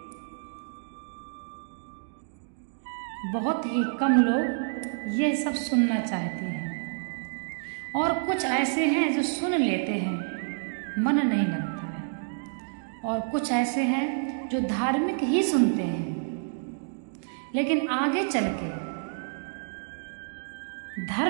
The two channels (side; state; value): left; silent; digital silence